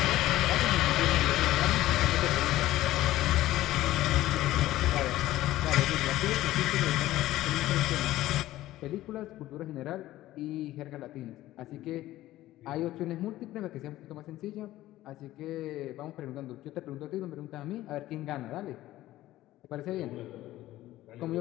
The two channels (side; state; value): right; quieter; 15.4 dB